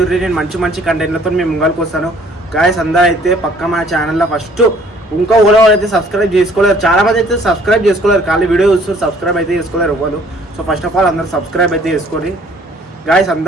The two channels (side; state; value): both; normal; correlation 0.58